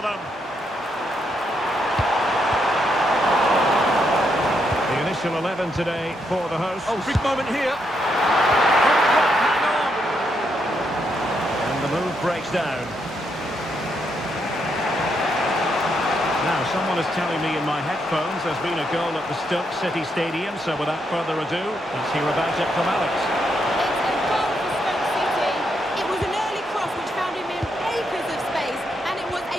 The initial 11 today for the hosts. Oh, big moment here. Hang on. And the move breaks down. Now, someone is telling me in my headphones there's been a goal at the Stoke City Stadium, so without further ado, let's hear about it from Alex.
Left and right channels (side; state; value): both; normal; correlation 0.78